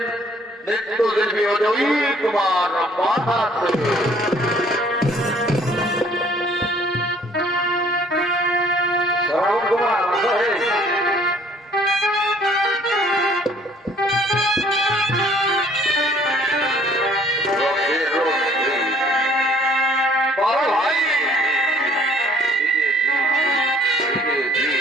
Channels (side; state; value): both; normal; correlation 0.59